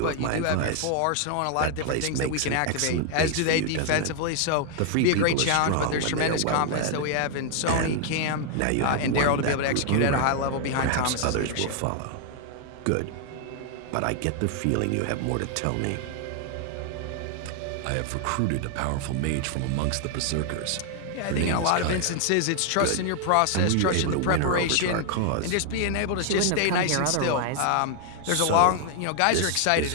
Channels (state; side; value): different; both; correlation 0.00